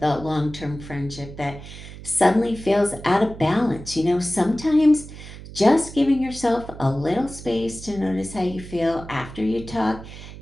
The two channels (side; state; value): right; noise; hum, 14 dB below the sound